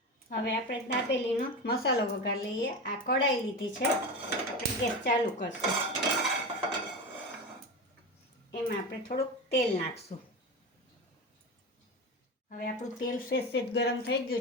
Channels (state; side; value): normal; both; correlation 0.23